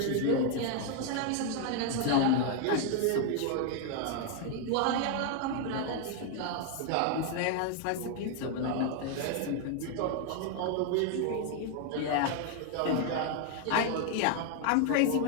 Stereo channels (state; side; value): different; both; correlation 0.01